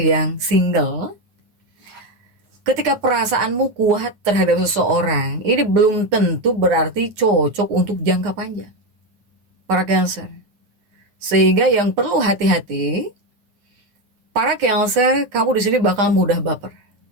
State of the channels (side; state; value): left; late; 9.4 ms